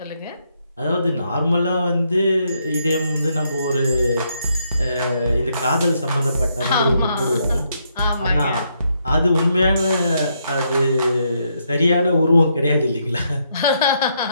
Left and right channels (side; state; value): both; inverted; correlation -0.77